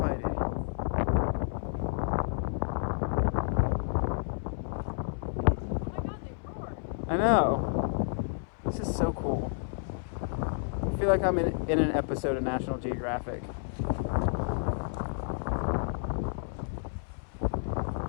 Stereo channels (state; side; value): silent; right; 57 dB below the other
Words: I know. This is so cool. I feel like I'm in an episode of National Geographic.